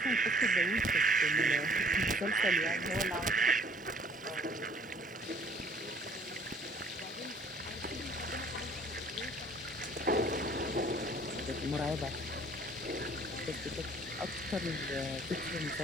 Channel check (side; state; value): both; normal; correlation 0.55